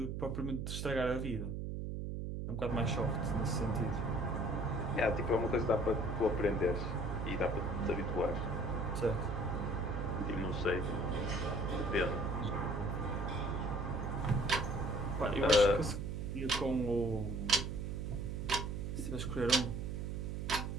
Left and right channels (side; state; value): right; noise; hum, 3 dB below the sound